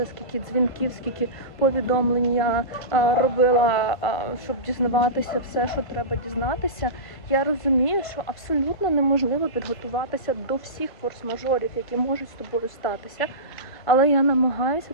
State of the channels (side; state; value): right; late; 1.5 ms